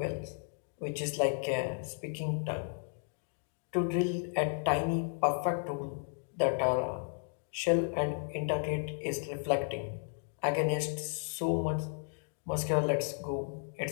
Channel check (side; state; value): right; silent; digital silence